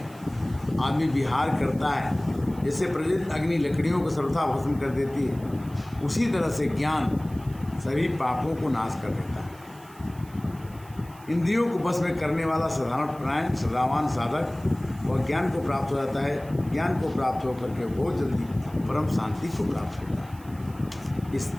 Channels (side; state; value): right; noise; hiss, 24 dB below the sound